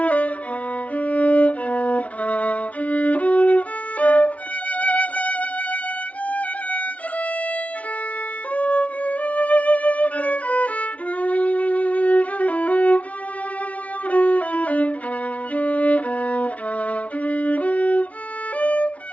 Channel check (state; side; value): late; right; 0.066 ms